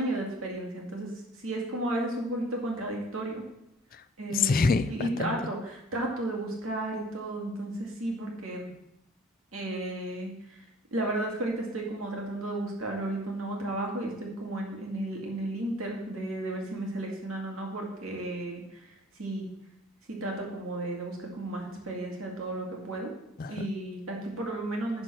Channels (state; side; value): normal; both; correlation 0.51